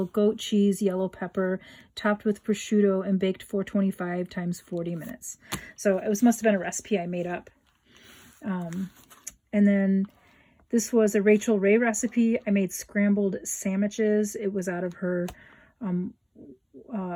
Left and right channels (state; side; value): identical; both; correlation 1.00